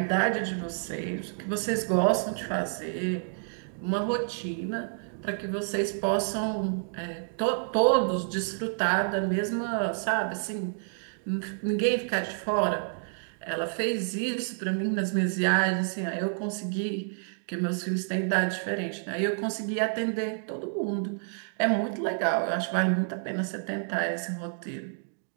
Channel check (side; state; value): left; silent; digital silence